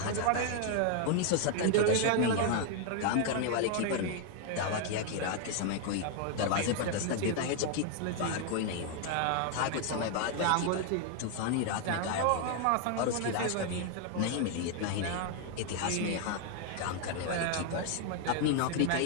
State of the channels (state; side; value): different; both; correlation 0.00